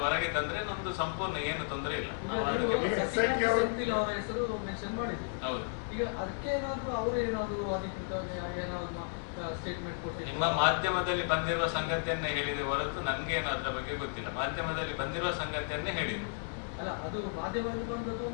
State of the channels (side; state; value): right; silent; digital silence